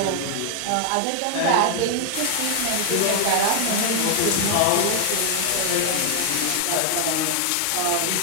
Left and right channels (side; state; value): both; different; correlation 0.00